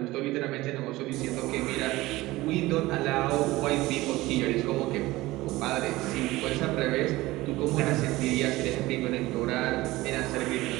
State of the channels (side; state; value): left; quieter; 18.8 dB